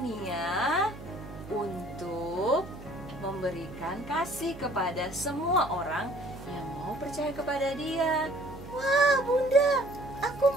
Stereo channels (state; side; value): noise; right; hum, 14 dB below the sound